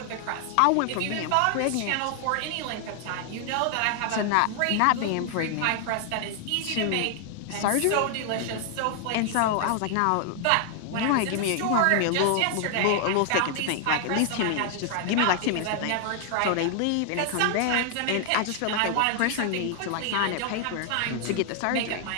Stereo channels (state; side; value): different; both; correlation 0.00